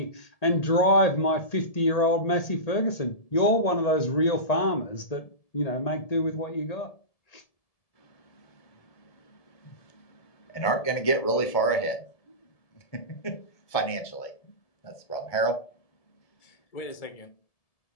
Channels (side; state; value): right; late; 1.7 ms